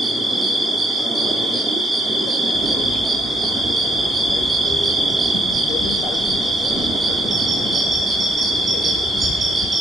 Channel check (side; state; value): both; normal; correlation 0.71